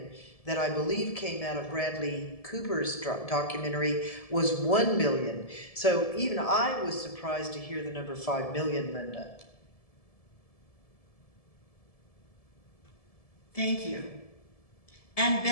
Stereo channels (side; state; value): right; late; 1.7 ms